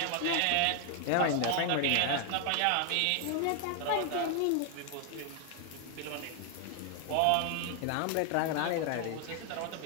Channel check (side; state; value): both; different; correlation 0.00